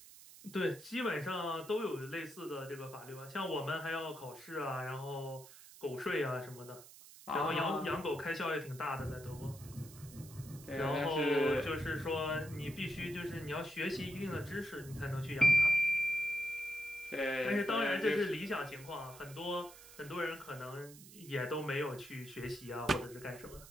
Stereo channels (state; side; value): noise; right; hiss, 18 dB below the sound